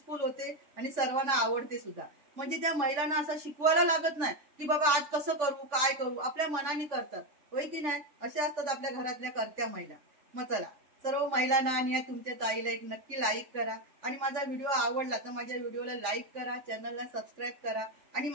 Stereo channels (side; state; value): left; late; 3.6 ms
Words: होते आणि सर्वांना आवडते सुद्धा. म्हणजे त्या महिलांना असं शिकवायला लागत नाही की बाबा आज कसं करू काय करू. आपल्या मनाने करतात. होय की नाही. असे असतात आपल्या घरातल्या करत्या महिला. मग चला सर्व महिलांना आणि तुमच्या ताईला एक नक्की लाईक करा. आणि माझा व्हिडिओ आवडला तर माझ्या व्हिडिओला लाईक करा, चॅनलला सबस्क्राईब करा. आणि